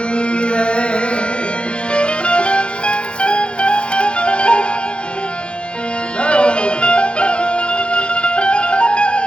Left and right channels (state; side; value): late; right; 0.056 ms